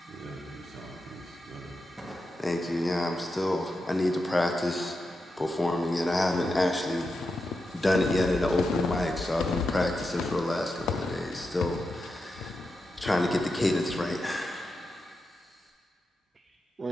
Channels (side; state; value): both; normal; correlation 0.88